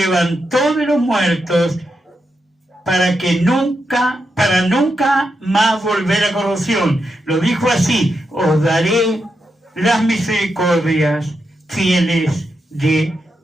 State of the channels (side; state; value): both; normal; correlation 0.85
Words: de los muertos, para nunca más volver a corrupción. Lo dijo así: os daré las misericordias fieles de